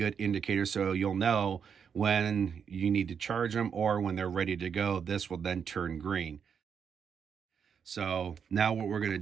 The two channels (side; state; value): left; quieter; 7.1 dB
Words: indicator, so you'll know when you need to charge them or when they're ready to go. This will then turn green. So now what we're going to